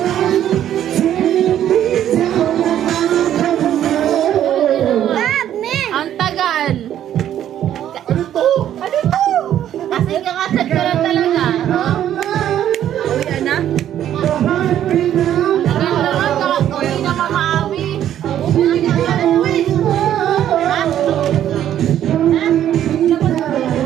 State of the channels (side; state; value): left; quieter; 11.0 dB